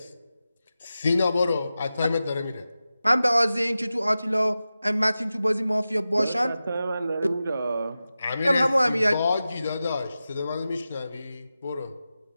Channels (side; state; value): both; inverted; correlation -0.94